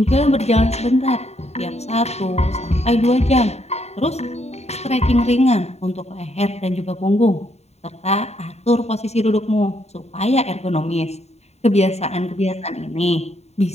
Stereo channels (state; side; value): late; right; 0.31 ms